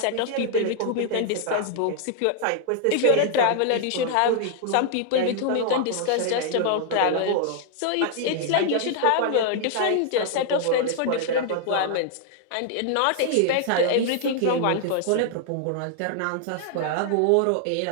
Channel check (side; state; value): both; different; correlation 0.00